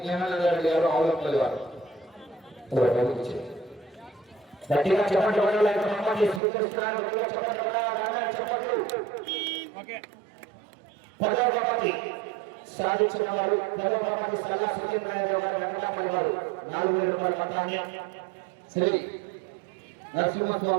జ్ఞానానందరెడ్డి గారు ఆవులపల్లి వారు. గట్టిగా చెప్పండి వడాలని బహుమతి స్వీకరిస్తున్నారు. గట్టిగా చెప్పండి వడాలని చెప్పండి. ఓకే 10వ బహుమతి సాధించిన వారు 10వ బహుమతి సల్లా సురేంద్రరావు గారు వెంకటపల్లి వారు 4,000 రూపాయల మొత్తాన్ని శ్రీ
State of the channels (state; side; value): drops out; left; at 6.4 s